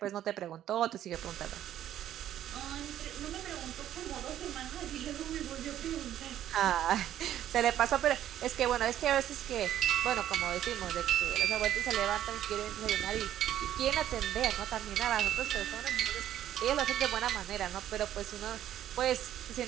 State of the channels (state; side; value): quieter; left; 11.6 dB